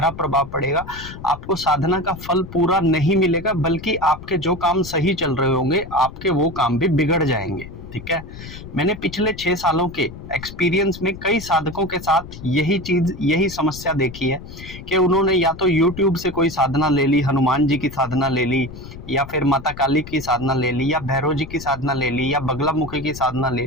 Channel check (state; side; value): noise; left; rumble, 14 dB below the sound